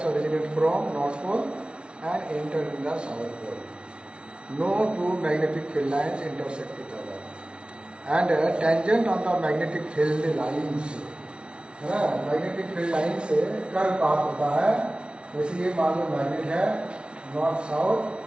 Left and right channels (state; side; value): late; left; 0.057 ms